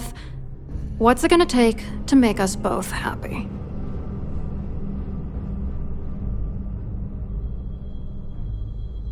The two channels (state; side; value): identical; both; correlation 1.00